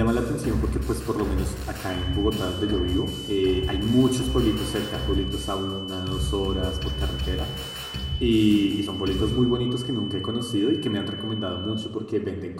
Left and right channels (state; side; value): identical; both; correlation 1.00